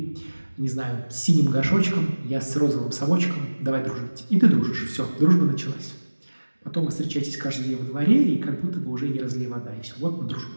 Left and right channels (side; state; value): both; inverted; correlation -1.00